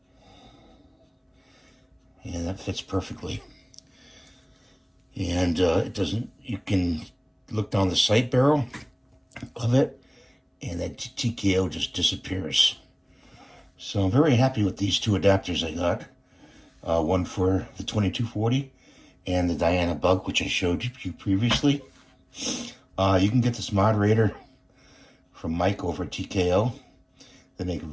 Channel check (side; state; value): both; identical; correlation 1.00